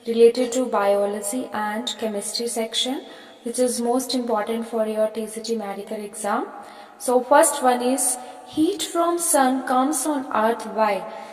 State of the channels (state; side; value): identical; both; correlation 1.00